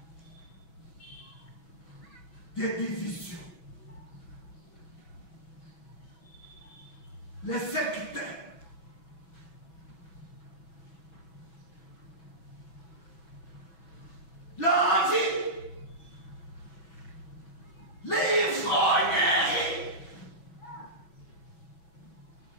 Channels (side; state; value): right; late; 6.1 ms